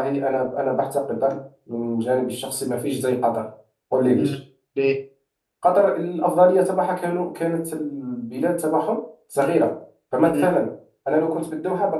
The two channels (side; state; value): both; identical; correlation 1.00